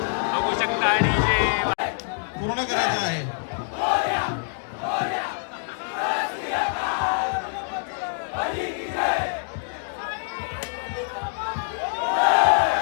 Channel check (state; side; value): silent; right; digital silence